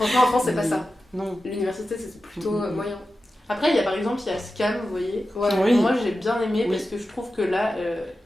en France, c'est pas ça. Non. L'université, c'est plutôt moyen. Après, il y a par exemple, il y a Scam, vous voyez. Ouais. Oui. Moi, j'ai bien aimé Oui. parce que je trouve que là,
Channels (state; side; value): normal; both; correlation 0.93